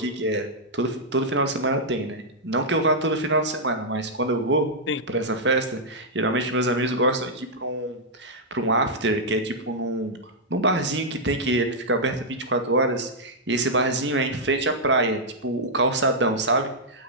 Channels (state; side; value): normal; both; correlation -0.07